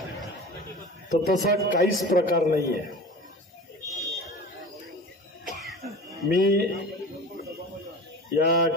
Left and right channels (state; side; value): normal; both; correlation 0.36